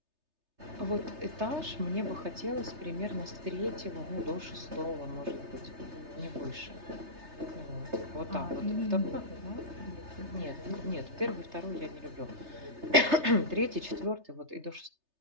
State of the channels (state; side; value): late; left; 3.3 ms